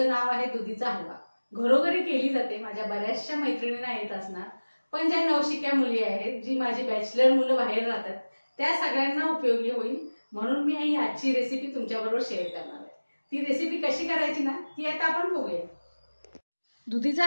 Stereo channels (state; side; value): inverted; both; correlation -1.00